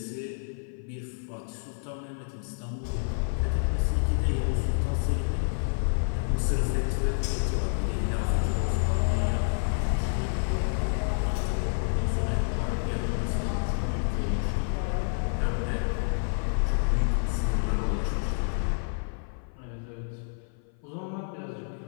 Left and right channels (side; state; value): right; silent; 55 dB below the other